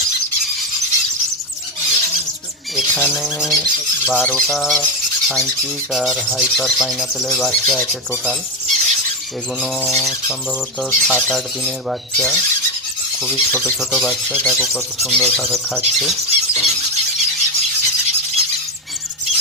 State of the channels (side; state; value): both; normal; correlation 0.09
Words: এখানে 12টা সানচিক আর হাইপার পাইনাপেলের বাচ্চা আছে টোটাল। এগুলো সম্ভবত 7-8 দিনের বাচ্চা, খুবই ছোট ছোট বাচ্চা। দেখো কত সুন্দরভাবে খাচ্ছে।